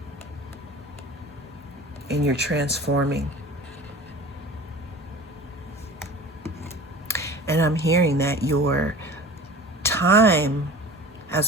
And you're transforming. And I'm hearing that your time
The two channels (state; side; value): normal; both; correlation 0.40